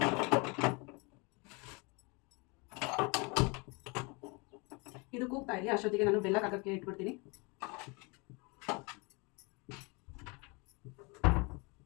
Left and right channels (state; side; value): quieter; right; 29.5 dB